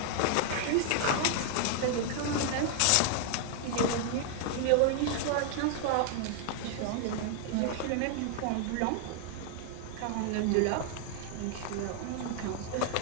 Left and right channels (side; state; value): both; different; correlation 0.00